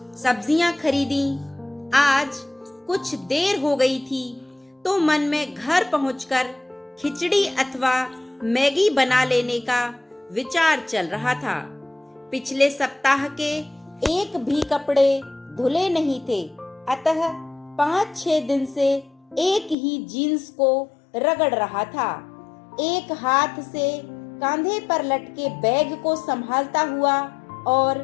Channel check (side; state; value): right; drops out; at 19.8 s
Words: सब्जियां खरीदी। आज कुछ देर हो गई थी तो मन में घर पहुंचकर खिचड़ी अथवा मैगी बना लेने का विचार चल रहा था। पिछले सप्ताह के एक भी कपड़े धुले नहीं थे, अतः 5-6 दिन से एक ही जीन्स को रगड़ रहा था। एक हाथ से कंधे पर लटके बैग को संभालता हुआ और